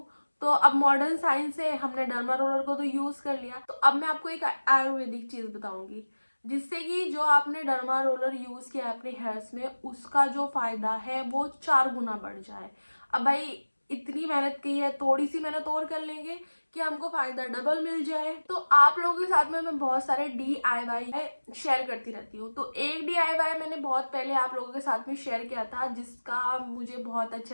तो अब मॉडर्न साइंस से हमने डर्मा रोलर को तो यूज कर लिया, तो अब मैं आपको एक आयुर्वेदिक चीज बताऊंगी जिससे कि जो आपने डर्मा रोलर यूज किया अपने हेयर्स में उसका जो फायदा है वो 4 गुना बढ़ जाए। अब भाई इतनी मेहनत की है, थोड़ी सी मेहनत और कर लेंगे कि हमको फायदा डबल मिल जाए। तो आप लोगों के साथ में मैं बहुत सारे DIY शेयर करती रहती हूँ। तो एक DIY मैंने बहुत पहले आप लोगों के साथ में शेयर किया था जिसका मुझे बहुत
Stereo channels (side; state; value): both; inverted; correlation -1.00